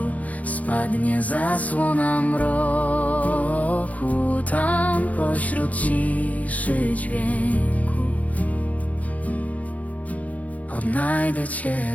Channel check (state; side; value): late; right; 0.072 ms